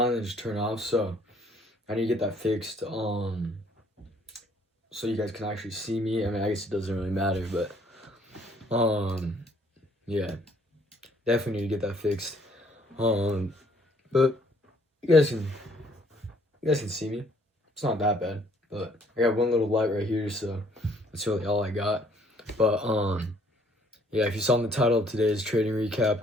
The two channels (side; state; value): both; normal; correlation 0.63